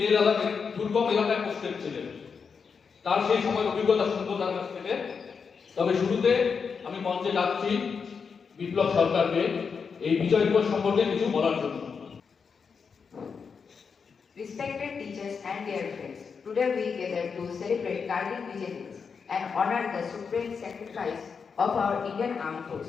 লাদাখের দুর্গম এলাকায় পোস্টেড ছিলেন। তার সেই সময়ের অভিজ্ঞতা শুনবো তার কাছ থেকে। তবে শুরুতে আমি মঞ্চে ডাকছি বিপ্লব সরকারকে এই বিজয় দিবস সম্পর্কে কিছু বলার জন্য। Respected teachers and dear friends, today we gather to celebrate Kargil Vijay દિવસ and honor the supreme sacrifice of our Indian Armed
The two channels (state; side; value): quieter; right; 5.8 dB